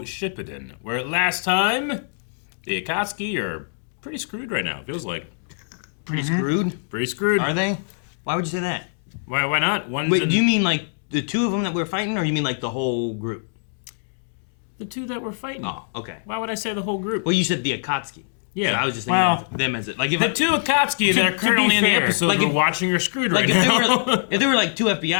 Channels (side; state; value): right; silent; digital silence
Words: Shippuden, where last time the Akatsuki are pretty screwed right now. It feels like. Pretty screwed? Pretty screwed. Are they? Why would you say that? Why not? Wait, do you mean like the two of them that we're fighting, or you mean like the whole group? The two that we're fighting. Oh, okay. Why would I say the whole group? Well, you said the Akatsuki. Yeah. So I was just thinking of them as it. Like if the two Akatsuki that are currently in the episode like we're if, watching are screwed like right now. if there were like two